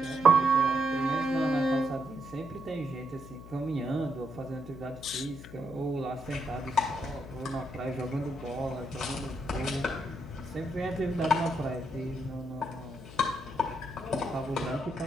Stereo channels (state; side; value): noise; left; hum, 15 dB below the sound